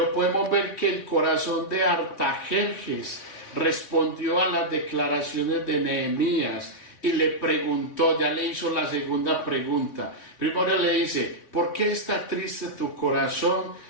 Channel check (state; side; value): late; right; 3.0 ms